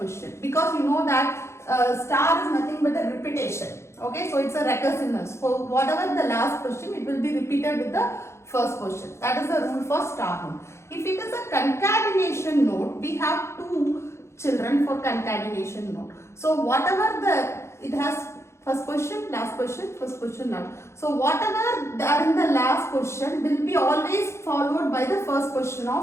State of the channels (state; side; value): late; right; 0.13 ms